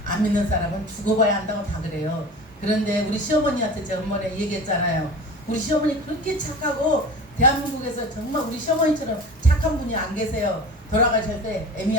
안 믿는 사람은 죽어봐야 한다고 다 그래요. 그런데 우리 시어머니한테 제가 한번에 얘기했잖아요. 우리 시어머니 그렇게 착하고 대한민국에서 정말 우리 시어머니처럼 착한 분이 안 계세요. 돌아가실 때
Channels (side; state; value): both; normal; correlation 0.36